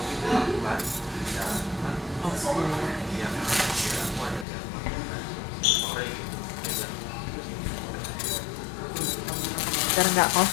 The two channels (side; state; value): right; drops out; at 4.5 s